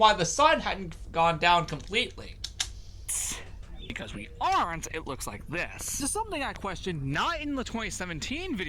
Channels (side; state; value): both; identical; correlation 1.00